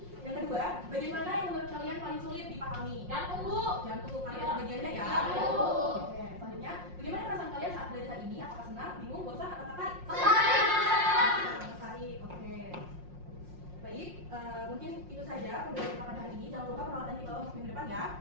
Yang kedua, bagaimana yang menurut kalian paling sulit dipahami? Jantung Bu. Jantung, karena ada bagiannya ya. Jantung. Oke, selanjutnya, bagaimana perasaan kalian saat belajar hari ini? Apakah senang, bingung, bosan, atau tertarik? Tertarik, oke. Baik, mungkin itu saja pembelajaran pada hari ini. Jangan lupa peralatan dibawa untuk minggu depan ya.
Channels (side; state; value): left; late; 5.6 ms